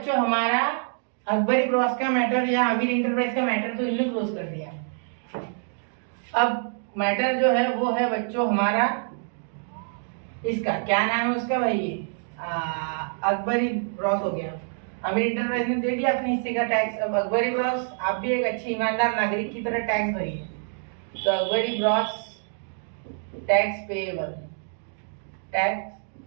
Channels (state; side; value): silent; left; 61 dB below the other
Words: हमारा अकबरी ब्रॉस का मैटर या आमिर इंटरप्राइज का मैटर तो इन्होंने क्लोज कर दिया। अब मैटर जो है वो है बच्चों हमारा इसका क्या नाम है उसका भाई, ये अकबरी ब्रॉस हो गया। आमिर इंटरप्राइज ने दे दिया अपने हिस्से का टैक्स। अब अकबरी ब्रॉस आप भी एक अच्छे ईमानदार नागरिक की तरह टैक्स भरिए। तो Akbari bros tax